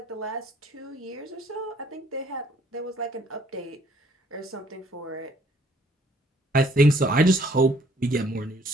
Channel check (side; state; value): both; normal; correlation 0.61